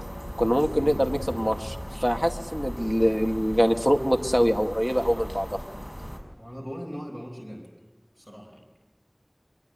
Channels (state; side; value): identical; both; correlation 1.00